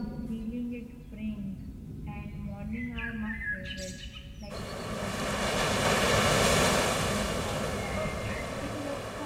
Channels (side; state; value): both; identical; correlation 1.00